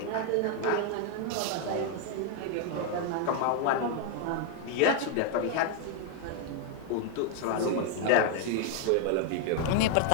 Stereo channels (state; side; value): different; both; correlation 0.00